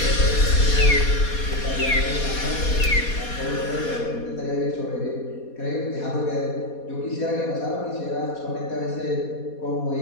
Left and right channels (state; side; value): late; right; 4.2 ms